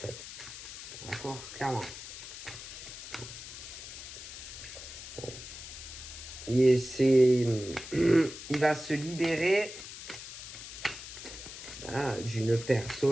D'accord, clairement. Et il va se libérer d'une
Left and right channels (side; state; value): left; noise; hiss, 11 dB below the sound